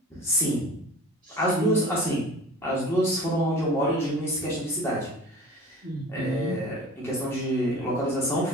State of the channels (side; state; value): both; normal; correlation 0.41